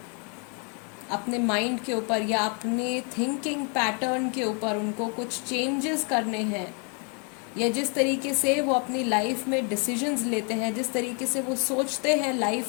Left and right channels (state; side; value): quieter; right; 37.5 dB